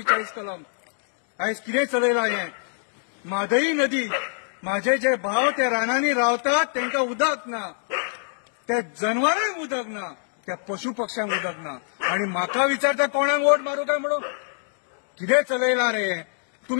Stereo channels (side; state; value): right; silent; digital silence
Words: कलम. आयज कितें चलयलां हें? म्हादई नदी, माझे जे भाव ते रानांनी रावतात तांकां उदक ना, त्या जनावरांक उदक ना, त्या पशु पक्ष्यांक उदक ना आणि म्हाका विचारता कोणाक वोट मारू काय म्हणून? कितें चलयलां रे